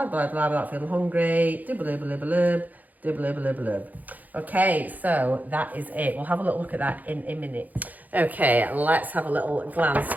blah, blah, without feeling hungry. Okay, so that is it. We'll have a little look at that in a minute. Okay, let's have a little glance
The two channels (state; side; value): late; left; 0.081 ms